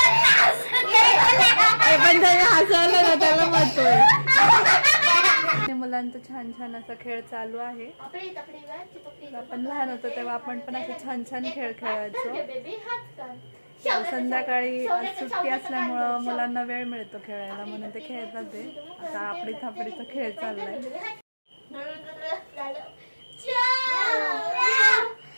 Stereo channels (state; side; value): inverted; both; correlation -1.00